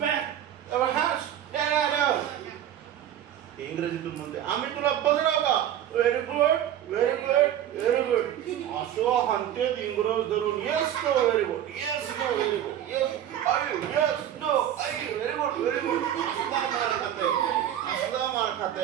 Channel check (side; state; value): left; quieter; 11.0 dB